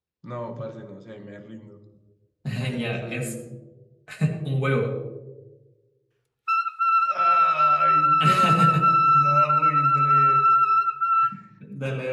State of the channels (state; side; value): identical; both; correlation 1.00